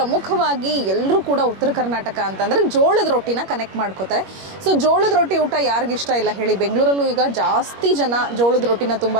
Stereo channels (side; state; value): left; late; 21 ms